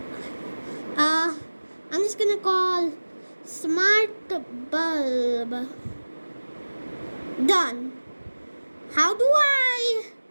I'm just gonna call smart bulb. Done. How do I?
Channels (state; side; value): inverted; both; correlation -1.00